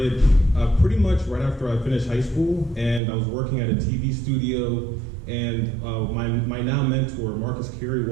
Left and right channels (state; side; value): drops out; left; at 3.0 s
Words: pretty much right after I finished high school, and I was working at a TV studio, and my now mentor, Marcus